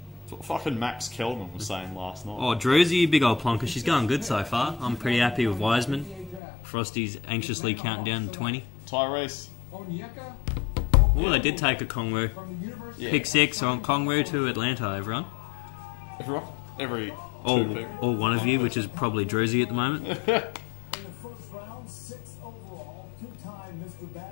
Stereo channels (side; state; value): right; drops out; at 6.4 s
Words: That's what fucking Max Kelman was saying last night. Oh, Druzy, big old plonker. She's going good so far. I'm pretty happy with Wiseman. Frosty's anxiously counting down to 20. Tyrese. Oh, they did take a Kongwu. Yeah. Pick 6 on Kongwu to Atlanta, everyone. Everyone? Every All two pick. one of you, which is probably Druzy at the moment.